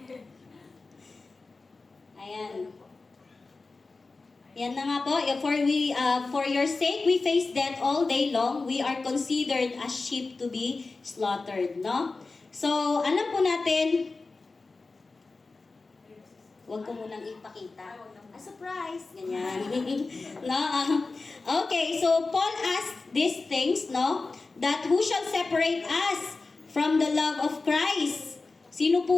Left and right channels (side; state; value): right; quieter; 3.8 dB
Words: ayan. Yan na nga po. For your sake we face death all day long. We are considered as sheep to be slaughtered, no? So, alam po natin, huwag ko munang ipakita. A surprise! Ganyan. No? Okay, so Paul asked these things, no? That who shall separate us from the love of Christ? Sino